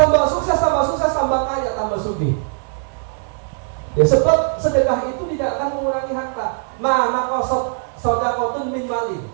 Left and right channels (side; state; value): left; silent; 61 dB below the other